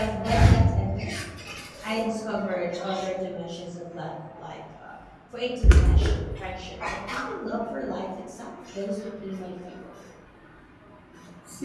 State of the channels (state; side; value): identical; both; correlation 1.00